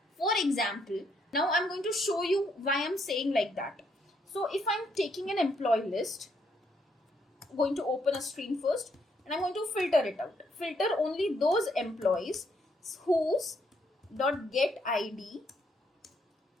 For example, now I'm going to show you why I'm saying like that. So if I'm taking an employee list, I'm going to open a stream first and I'm going to filter it out. Filter only those employees whose .get ID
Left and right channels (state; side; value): normal; both; correlation 0.73